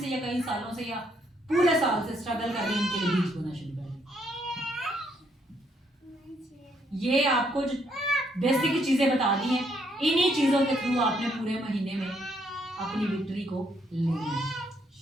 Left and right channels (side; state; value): both; normal; correlation 0.71